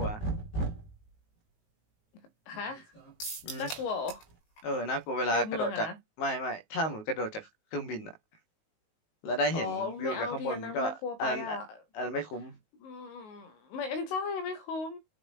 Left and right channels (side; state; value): right; late; 19 ms